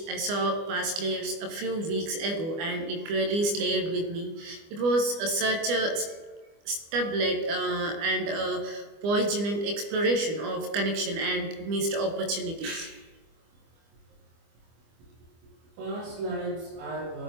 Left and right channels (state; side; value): late; left; 25 ms